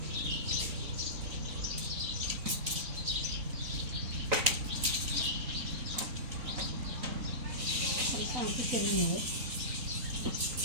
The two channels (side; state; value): left; late; 3.9 ms